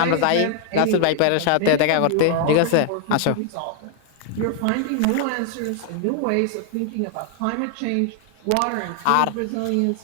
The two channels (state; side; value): different; both; correlation 0.00